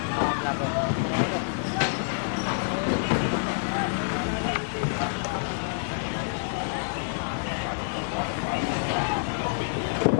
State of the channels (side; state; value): right; silent; digital silence